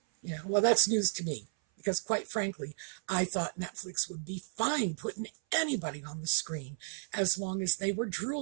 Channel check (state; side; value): silent; left; 55 dB below the other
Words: Well, that's news to me, because quite frankly, I thought Netflix would be fine putting anybody on the screen as long as they were